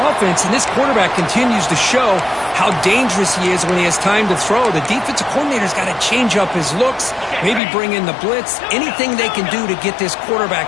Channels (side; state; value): right; drops out; at 7.6 s